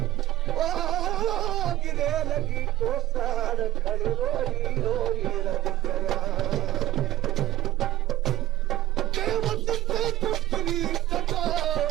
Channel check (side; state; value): left; quieter; 15.5 dB